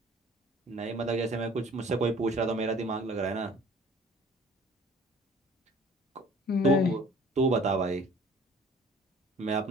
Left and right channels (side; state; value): both; normal; correlation 0.51